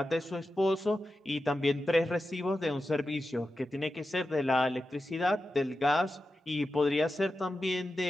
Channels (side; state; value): both; normal; correlation 0.91